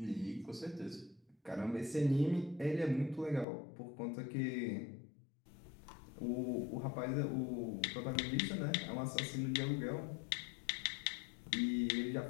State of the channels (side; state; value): right; drops out; at 3.5 s